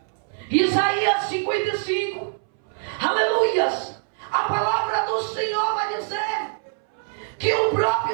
Isaías 55. Aleluias. A palavra do Senhor vai dizer que o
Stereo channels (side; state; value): left; silent; 61 dB below the other